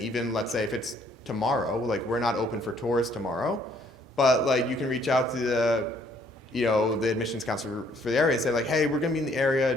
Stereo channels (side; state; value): both; normal; correlation 0.64